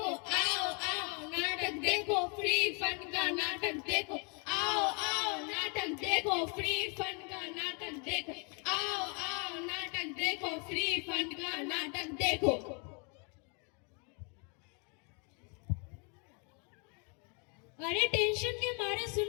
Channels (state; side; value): quieter; right; 35.5 dB